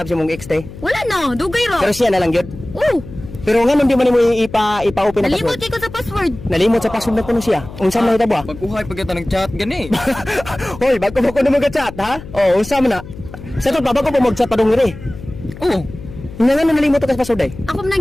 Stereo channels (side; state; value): left; noise; hum, 14 dB below the sound